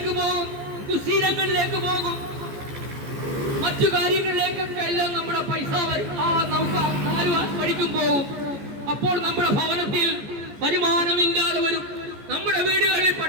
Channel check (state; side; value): late; left; 14 ms